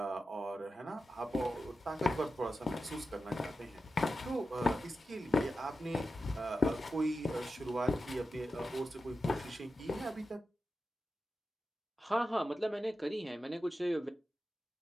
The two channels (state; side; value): normal; both; correlation 0.91